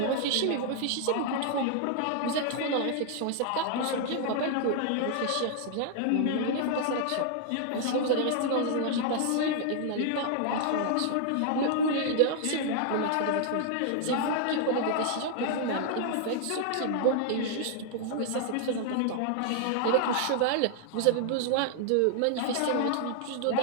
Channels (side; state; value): both; different; correlation 0.00